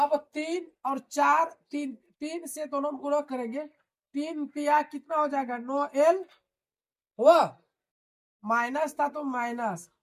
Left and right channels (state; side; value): identical; both; correlation 1.00